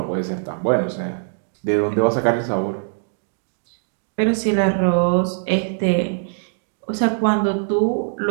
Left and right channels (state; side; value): silent; left; 64 dB below the other